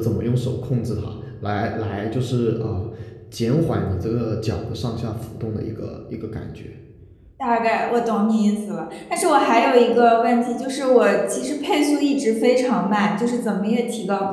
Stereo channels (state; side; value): identical; both; correlation 1.00